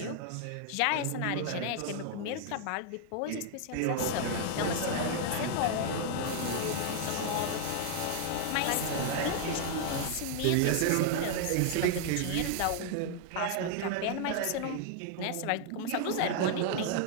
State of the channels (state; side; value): different; both; correlation 0.00